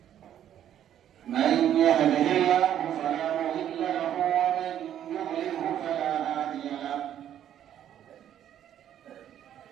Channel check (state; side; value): quieter; left; 10.6 dB